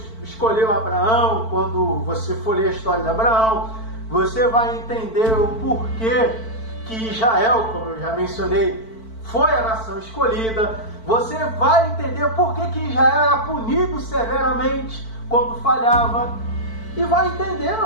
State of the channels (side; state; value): right; late; 4.5 ms